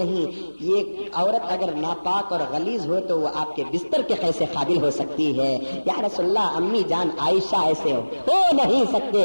یہ عورت اگر ناپاک اور غلیظ ہو تو وہ آپ کے بستر کے کیسے قابل ہو سکتی ہے؟ یا رسول اللہ امی جان عائشہ ایسے ہو نہیں سکتے۔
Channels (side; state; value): both; inverted; correlation -1.00